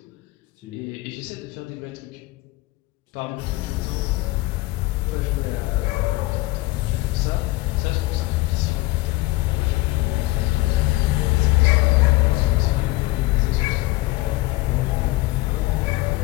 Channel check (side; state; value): right; quieter; 20.2 dB